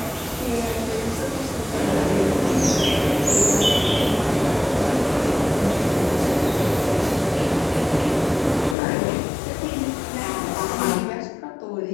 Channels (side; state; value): right; drops out; at 8.8 s